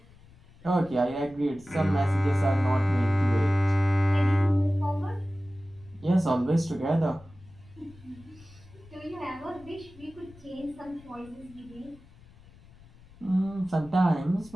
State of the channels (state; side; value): noise; left; rumble, 24 dB below the sound